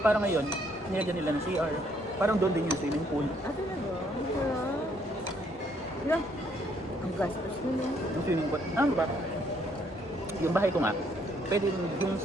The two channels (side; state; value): both; normal; correlation 0.68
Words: ngayon, nilagyan nila ng CR. Parang doon din yung swimming pool. Ah, talaga? Wala. Ang gastos nila. Yung swimming pool. Ano ba? Yung bahay ko nga, pwede yung